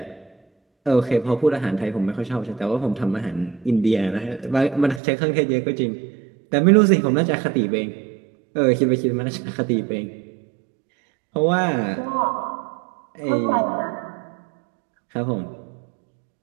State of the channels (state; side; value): drops out; left; at 5.0 s